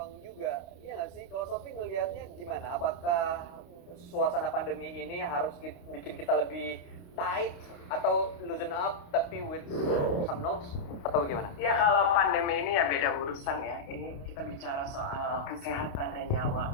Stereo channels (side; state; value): right; late; 29 ms